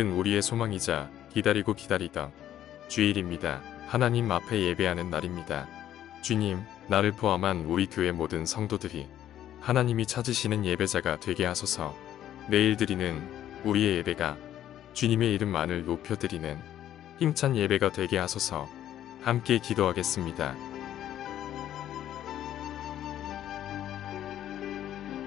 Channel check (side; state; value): right; quieter; 11.6 dB